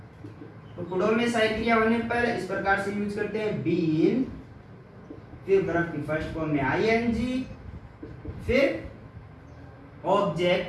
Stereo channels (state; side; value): identical; both; correlation 1.00